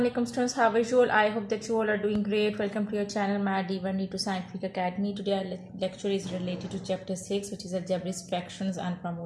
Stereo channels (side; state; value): both; identical; correlation 1.00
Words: students, how are you all? I hope that you all are doing great. Welcome to your channel Math D1 to Scientific Academy. Today our lecture is related to chapter 6, which is algebraic fractions and